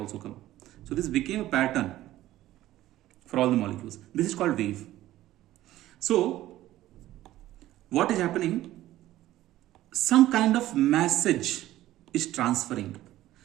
come. So this became a pattern for all the molecules. This is called wave. So what is happening? Some kind of message is transferring.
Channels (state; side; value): quieter; left; 14.8 dB